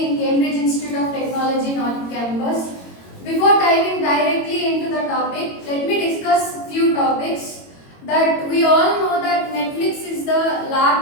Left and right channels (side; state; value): right; late; 22 ms